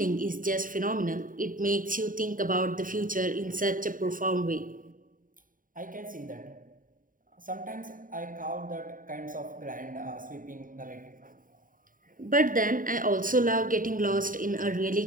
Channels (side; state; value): left; late; 0.39 ms